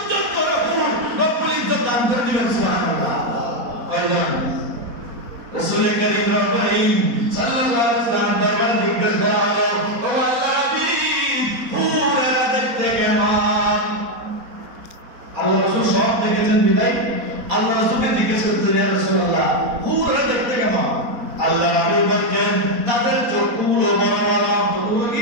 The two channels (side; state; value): left; late; 4.1 ms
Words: জন করে হুর রব্বুল ইজ্জত দান করে দিবেন। সুবহানাল্লাহ। কয়জন? রাসূল করিম সাল্লাল্লাহু আলাইহি ওয়াসাল্লাম দরবারে জিজ্ঞেস করা হলো, ও আল্লাহর হাবিব, হুরেরা দেখতে কেমন? আল্লাহ রাসূল সব দেখেছেন বিদায় আল্লাহ রাসূলকে জিজ্ঞেস করতেন, ইয়া রাসূলুল্লাহ হুরেরা দেখতে কেমন? আল্লাহ রাসূল বলেন তাদের চোখগুলো বড় বড়। চোখগুলো